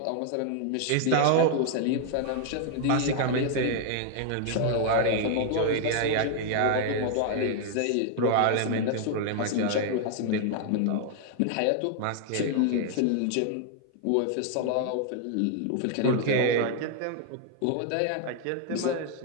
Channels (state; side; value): different; both; correlation 0.00